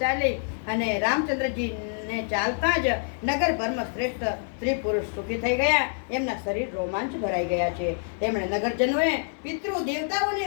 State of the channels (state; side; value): silent; right; digital silence